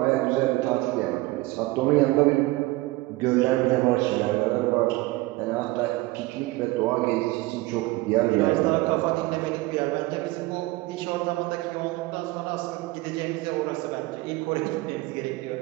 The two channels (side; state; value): left; quieter; 20.5 dB